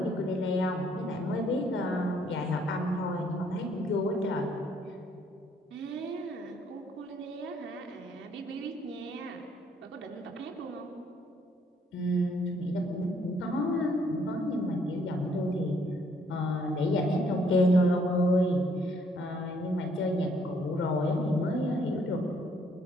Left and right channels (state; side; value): normal; both; correlation 0.66